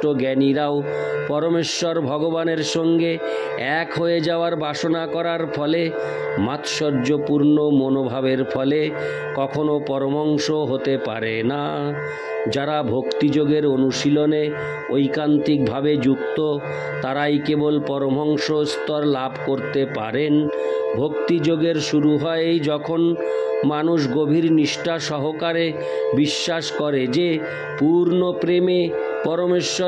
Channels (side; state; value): both; identical; correlation 1.00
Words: জ্ঞানীরাও পরমেশ্বর ভগবানের সঙ্গে এক হয়ে যাওয়ার বাসনা করার ফলে, মাৎসর্যপূর্ণ মনোভাবের ফলে কখনো পরমহংস হতে পারে না। যারা ভক্তিযোগের অনুশীলনে ঐকান্তিকভাবে যুক্ত তারাই কেবল পরমহংস স্তর লাভ করতে পারেন। ভক্তিযোগের শুরু হয় যখন মানুষ গভীর নিষ্ঠা সহকারে বিশ্বাস করে যে পূর্ণ প্রেমে